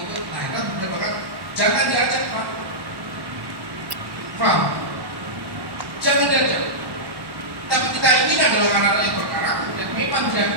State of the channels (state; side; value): late; left; 1.1 ms